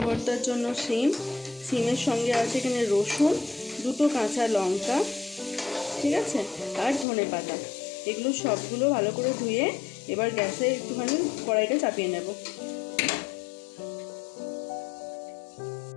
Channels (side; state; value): right; drops out; at 7.1 s